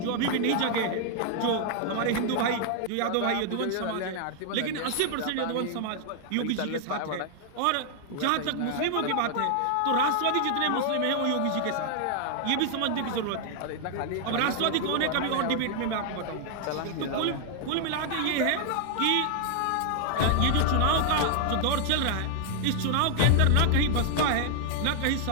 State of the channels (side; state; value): both; different; correlation 0.00